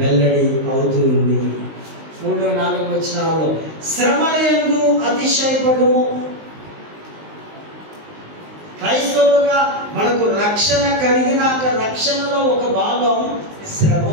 అవుతుంది. 3-4 వచనాల్లో శ్రమలందు అతిశయపడుము. క్రైస్తవులుగా మనకు రక్షణ కలిగినాక రక్షణలో ఒక భాగం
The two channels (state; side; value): late; left; 19 ms